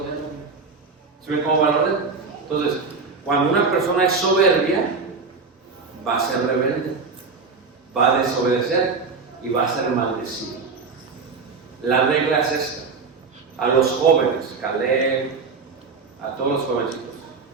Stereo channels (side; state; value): left; quieter; 4.7 dB